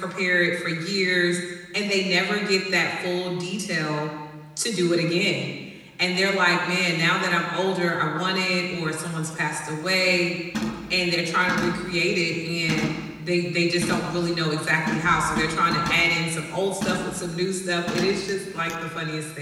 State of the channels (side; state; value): both; identical; correlation 1.00